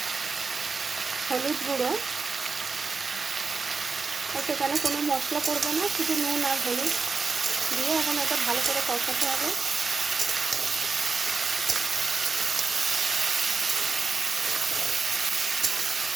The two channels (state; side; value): quieter; left; 4.6 dB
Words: হলুদ গুঁড়ো। সেখানে কোনো মশলা পড়বে না, শুধু নুন আর হলুদ দিয়ে এখন এটা ভালো করে কষাতে হবে।